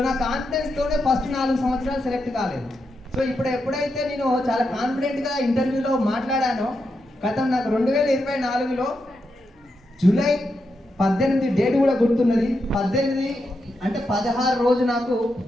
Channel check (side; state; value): both; normal; correlation 0.85